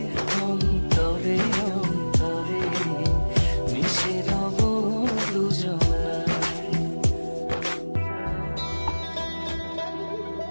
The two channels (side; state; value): both; inverted; correlation -1.00